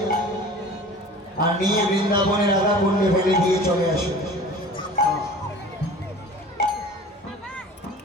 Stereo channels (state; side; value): normal; both; correlation 0.43